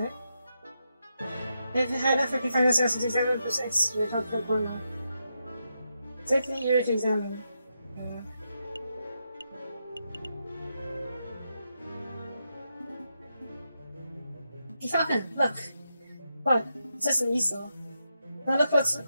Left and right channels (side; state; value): both; inverted; correlation -0.85